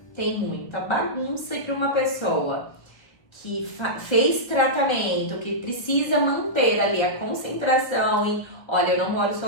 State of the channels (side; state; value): right; late; 1.1 ms